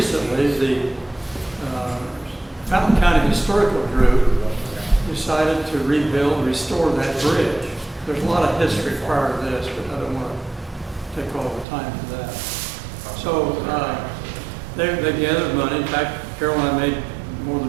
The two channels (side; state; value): left; drops out; at 11.7 s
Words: the Fountain County Historical Group decided to restore that bridge. There's a lot of history prior to this, but I don't want take all the time for that. So, they gathered money. In fact, Carol and I made more